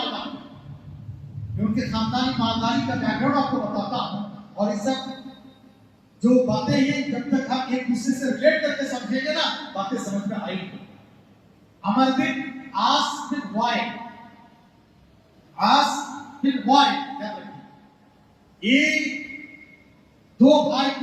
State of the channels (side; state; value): both; identical; correlation 1.00